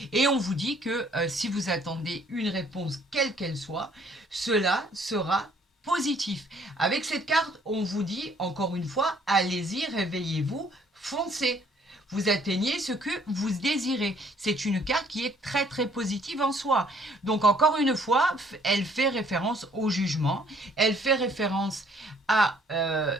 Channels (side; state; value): both; normal; correlation 0.61